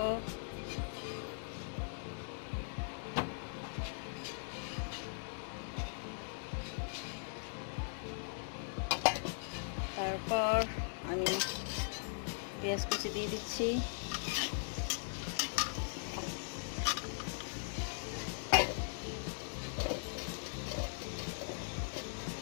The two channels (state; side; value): silent; right; 51 dB below the other